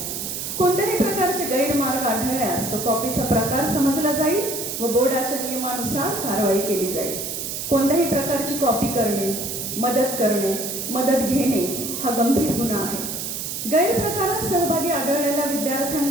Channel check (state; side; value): noise; right; hiss, 5 dB below the sound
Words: कोणत्याही प्रकारचे गैरमार्ग आढळल्यास तो कॉपीचा प्रकार समजला जाईल व बोर्डाच्या नियमानुसार कारवाई केली जाईल. कोणत्याही प्रकारची कॉपी करणे, मदत घेणे हा गंभीर गुन्हा आहे. गैरप्रकारात सहभागी आढळलेल्या